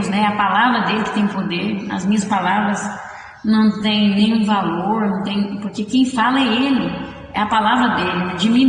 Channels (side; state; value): both; identical; correlation 1.00